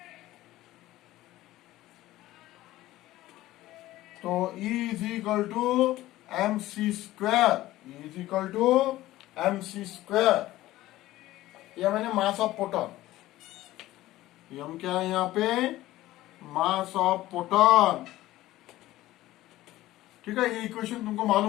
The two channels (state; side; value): quieter; right; 16.0 dB